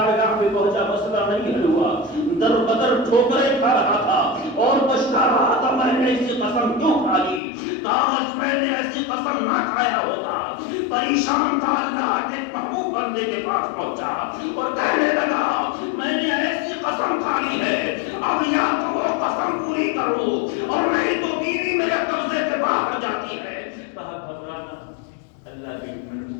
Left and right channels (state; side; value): drops out; right; at 7.4 s